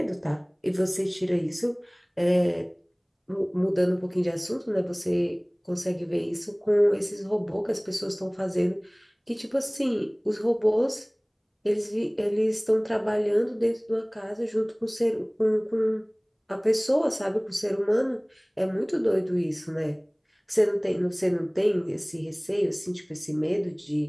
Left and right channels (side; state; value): both; identical; correlation 1.00